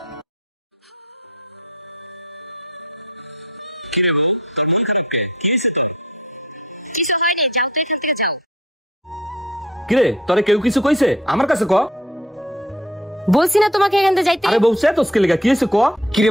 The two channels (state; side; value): normal; both; correlation 0.53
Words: কিরে তোরে কেউ কিছু কইছে? আমার কাছে ক। বলছি না তোমাকে এখান থেকে যাইতে। আরে বউছে তো স্কেলে কি হইছে ক।